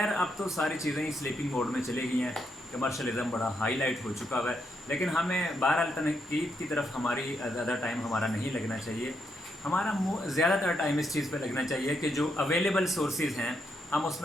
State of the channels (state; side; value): normal; both; correlation 0.79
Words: اب تو ساری چیزیں سلیپنگ موڈ میں چلے گئی ہیں، کمرشلزم بڑا ہائی لائٹ ہو چکا ہے، لیکن ہمیں بہرحال تنقید کی طرف ہماری زیادہ ٹائم ہمارا نہیں لگنا چاہیے۔ ہمارا زیادہ تر ٹائم اس چیز پہ لگنا چاہیے کہ جو اویلیبل سورسز ہیں ہم اس